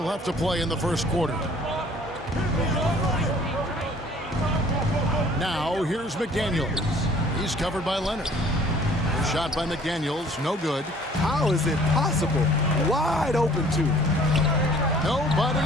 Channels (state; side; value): normal; both; correlation 0.54